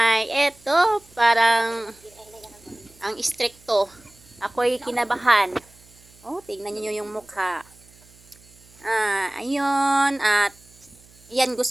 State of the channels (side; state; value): right; noise; hum, 27 dB below the sound